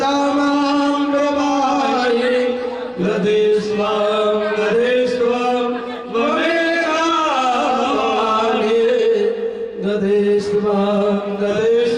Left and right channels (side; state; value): both; identical; correlation 1.00